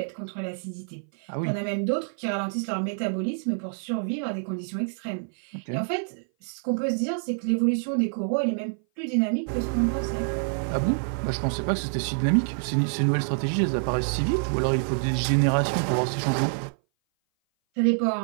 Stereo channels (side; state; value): left; silent; 57 dB below the other